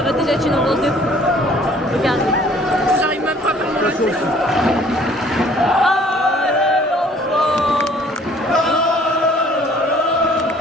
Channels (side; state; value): both; normal; correlation 0.56